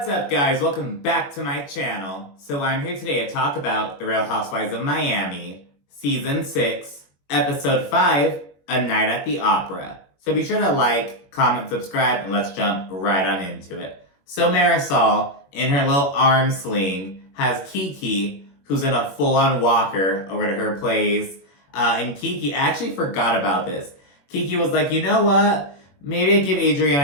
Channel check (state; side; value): late; right; 21 ms